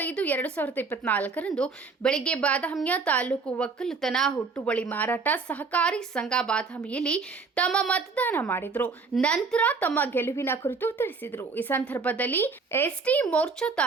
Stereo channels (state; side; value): quieter; left; 4.5 dB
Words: ರಂದು ಬೆಳಗ್ಗೆ ಬಾದಾಮಿಯ ತಾಲೂಕು ಒಕ್ಕಲುತನ ಹುಟ್ಟುವಳಿ ಮಾರಾಟ ಸಹಕಾರಿ ಸಂಘ ಬಾದಾಮಿಯಲ್ಲಿ ತಮ್ಮ ಮತದಾನ ಮಾಡಿದರು. ನಂತರ ತಮ್ಮ ಗೆಲುವಿನ ಕುರಿತು ತಿಳಿಸಿದರು. ಈ ಸಂದರ್ಭದಲ್ಲಿ ಎಸ್ಟಿ ಮೋರ್ಚಾ